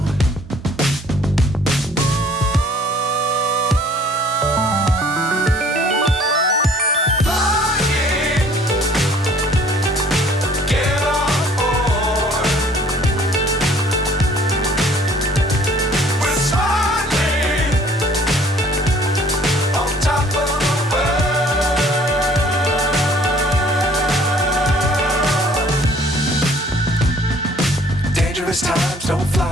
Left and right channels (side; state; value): both; normal; correlation 0.56